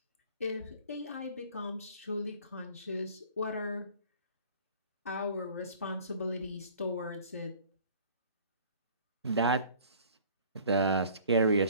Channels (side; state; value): both; inverted; correlation -0.49